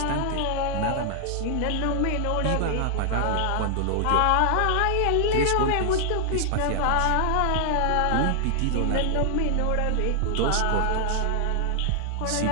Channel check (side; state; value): both; different; correlation 0.00